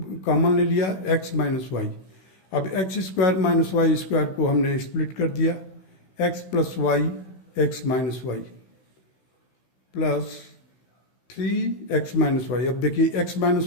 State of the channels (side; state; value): right; late; 16 ms